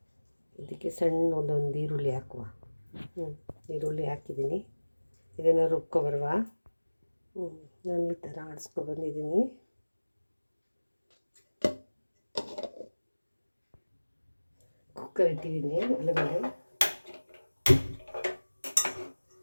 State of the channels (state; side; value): inverted; both; correlation -1.00